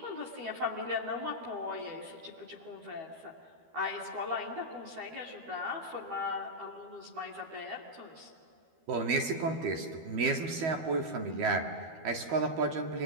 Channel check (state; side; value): late; left; 12 ms